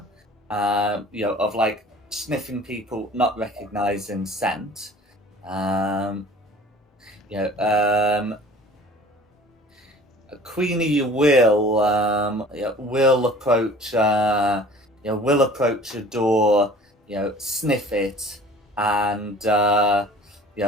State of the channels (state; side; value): normal; both; correlation 0.47